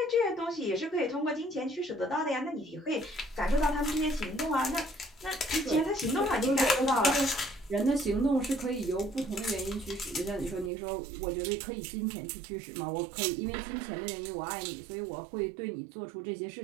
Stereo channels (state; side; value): drops out; left; at 10.7 s